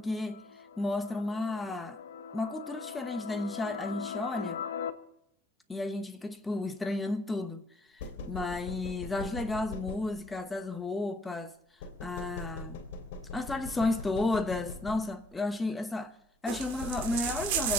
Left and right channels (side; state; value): both; normal; correlation 0.66